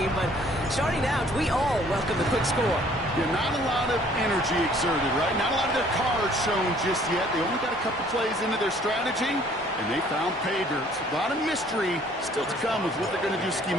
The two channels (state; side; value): normal; both; correlation 0.58